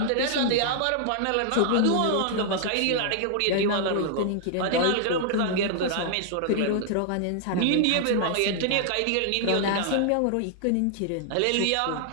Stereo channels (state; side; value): different; both; correlation -0.01